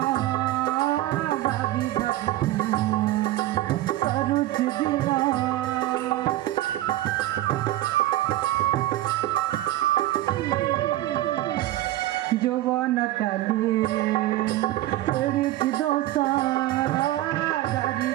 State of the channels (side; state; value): left; quieter; 15.3 dB